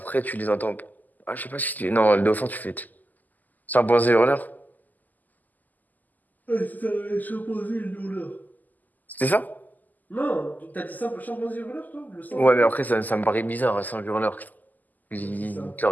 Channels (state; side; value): late; right; 0.083 ms